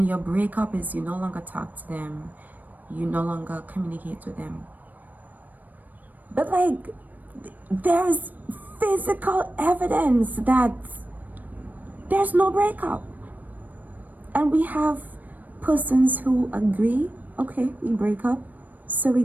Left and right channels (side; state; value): left; late; 0.084 ms